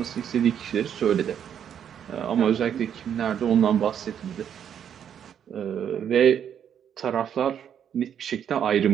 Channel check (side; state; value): left; quieter; 8.8 dB